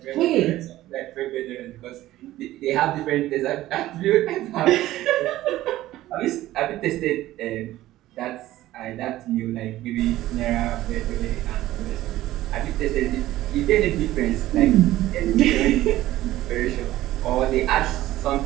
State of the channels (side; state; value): left; quieter; 15.3 dB